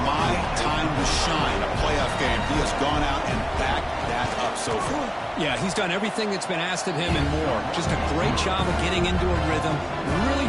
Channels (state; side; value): identical; both; correlation 1.00